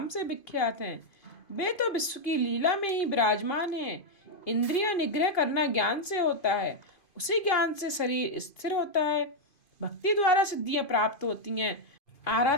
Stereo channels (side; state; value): right; late; 2.5 ms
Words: से विख्यात हैं। वे तो विश्व की लीला में ही विराजमान हैं। इंद्रिय निग्रह करना ज्ञान से होता है। उसी ज्ञान से शरीर स्थिर होता है। भक्ति द्वारा सिद्धियां प्राप्त होती हैं।